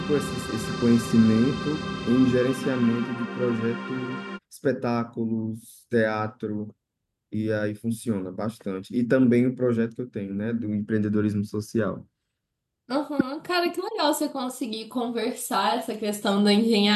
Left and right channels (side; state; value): both; identical; correlation 1.00